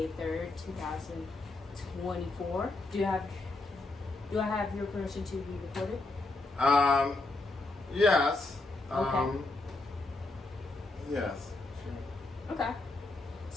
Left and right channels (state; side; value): quieter; right; 3.1 dB